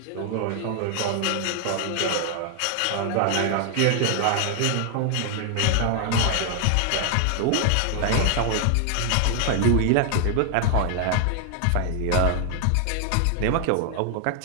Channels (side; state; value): both; different; correlation 0.00